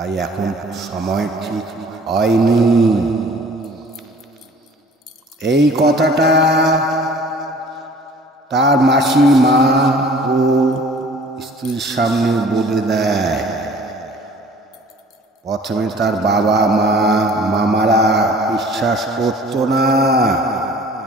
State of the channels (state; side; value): normal; both; correlation 0.50